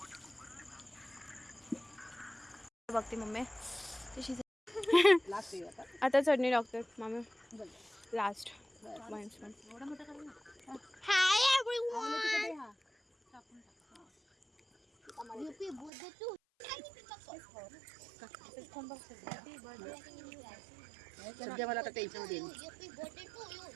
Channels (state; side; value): drops out; left; at 15.9 s